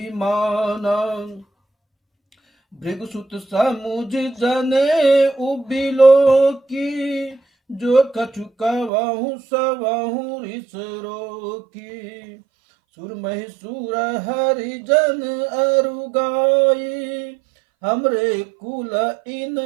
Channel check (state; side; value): drops out; left; at 8.9 s